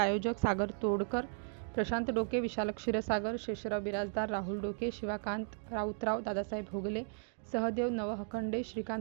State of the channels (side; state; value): left; silent; 54 dB below the other